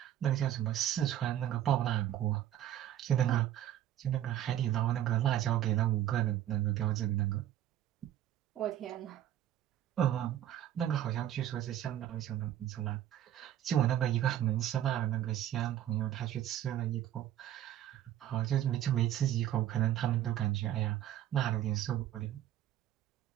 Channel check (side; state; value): left; quieter; 11.9 dB